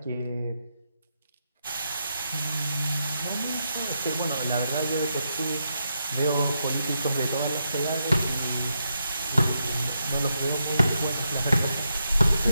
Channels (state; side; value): inverted; both; correlation -0.83